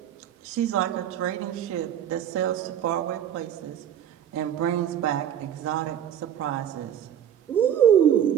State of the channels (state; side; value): quieter; left; 9.8 dB